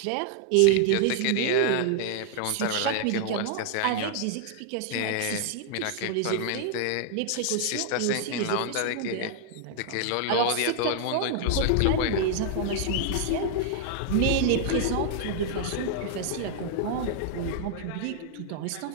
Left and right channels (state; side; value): different; both; correlation 0.00